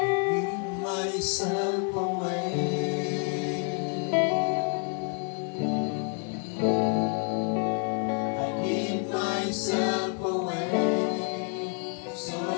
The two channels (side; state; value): right; quieter; 39.3 dB